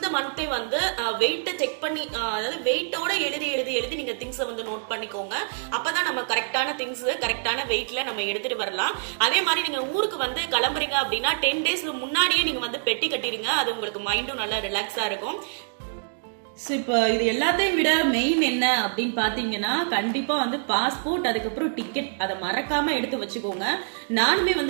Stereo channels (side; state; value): left; silent; digital silence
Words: மந்தே வந்து வெயிட்ட செக் பண்ணி அதாவது வெயிட்டோட எழுதி நீங்க திங்ஸ் வந்து நோட் பண்ணிக்கோங்க. அப்பதான் நம்ம கரெக்டான திங்ஸ் கரெக்டான வெயிட்ல நம்ம எடுத்துட்டு வரலாம். அதே மாதிரி நீங்க ஊருக்கு வந்து கிளம்புறீங்க அப்படின்னா 10 days முன்னாடியே நீங்க வந்து பெட்டி கட்டிருங்க. அது உங்களுக்கு மைண்டும் நல்லா ரிலாக்ஸா இருக்கும். இப்போ இது எல்லாத்தையும் விட மெயின் என்ன அப்படின்னு பாத்தீங்கன்னா கண்டிப்பா வந்து பாஸ்போர்ட், அதுக்கப்புறம் டிக்கெட், அதை மறக்காம எடுத்து வச்சுக்கோங்க. நானுமே